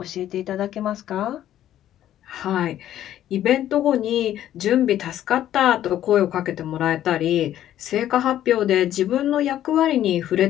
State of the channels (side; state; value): right; quieter; 12.0 dB